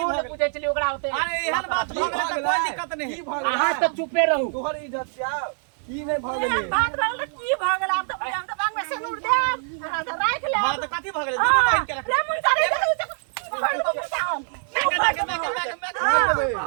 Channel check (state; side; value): silent; left; 58 dB below the other